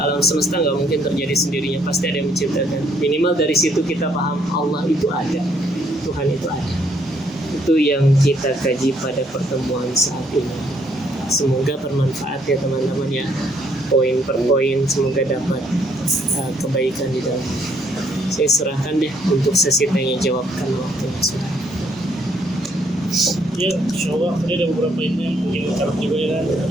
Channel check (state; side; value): normal; both; correlation 0.68